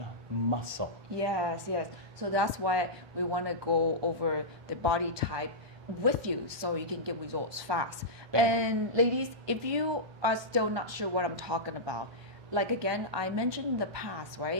muscle. Yes. So that's why we want to go over the body type with you so you can get results fast. And ladies, if you are still not sure what I'm talking about, like again, I mentioned in the past,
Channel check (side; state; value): left; late; 1.2 ms